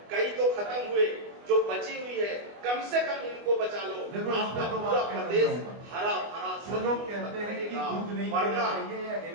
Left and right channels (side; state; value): left; late; 24 ms